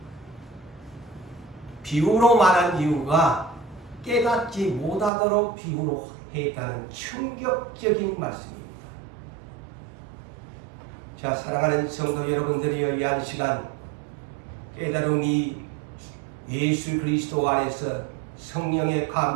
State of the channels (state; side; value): drops out; left; at 5.1 s